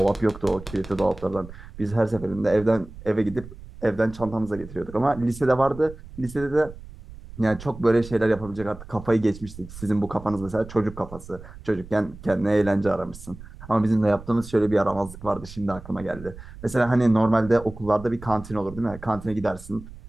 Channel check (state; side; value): noise; right; rumble, 16 dB below the sound